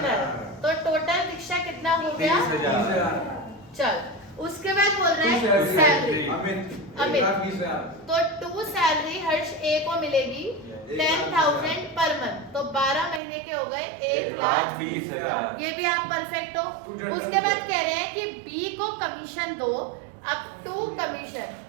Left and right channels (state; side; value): drops out; left; at 13.2 s